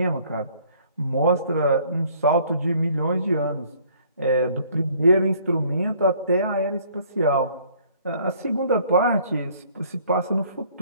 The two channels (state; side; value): inverted; both; correlation -0.59